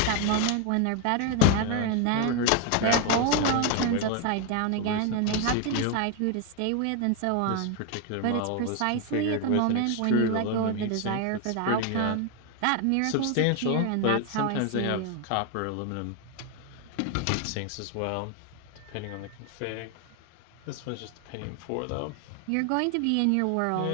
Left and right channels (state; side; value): different; both; correlation 0.01